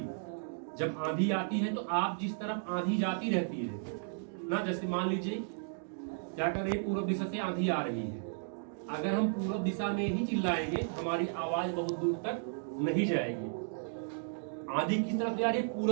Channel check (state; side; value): silent; left; digital silence